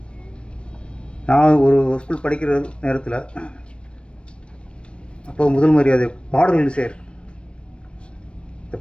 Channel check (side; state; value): right; late; 0.058 ms